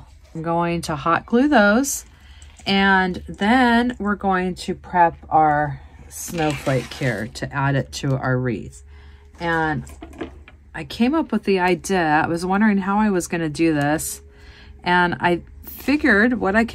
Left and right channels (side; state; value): both; identical; correlation 1.00